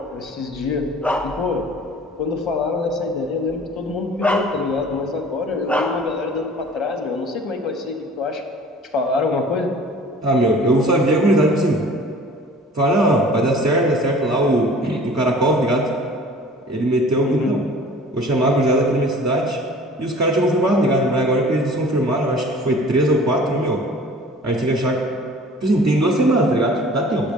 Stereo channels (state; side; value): normal; both; correlation 0.47